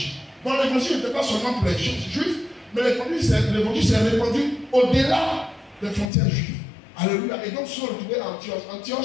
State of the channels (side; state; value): right; drops out; at 6.1 s